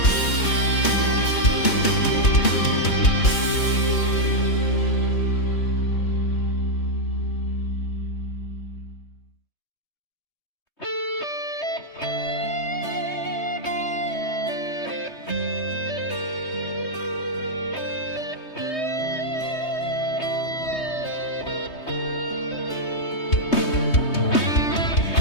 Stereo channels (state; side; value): late; right; 3.2 ms